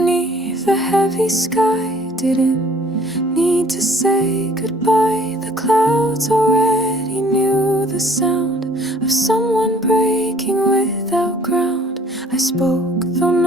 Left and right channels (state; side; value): normal; both; correlation 0.56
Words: a heavy sky, didn't need to say goodbye. The clouds already knew the sound of someone breaking without ground. I spoke though